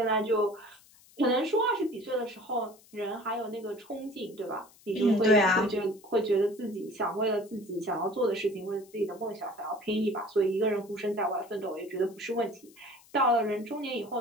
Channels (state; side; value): noise; left; hiss, 26 dB below the sound